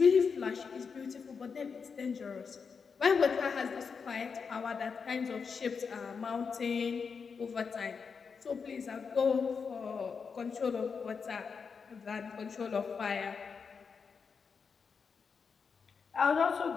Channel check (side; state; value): right; quieter; 5.7 dB